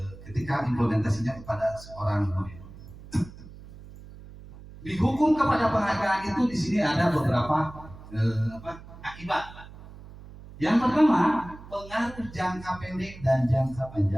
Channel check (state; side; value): noise; right; hum, 17 dB below the sound